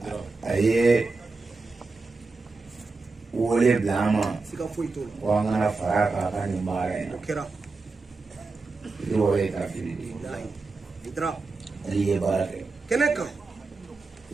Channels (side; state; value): left; quieter; 3.9 dB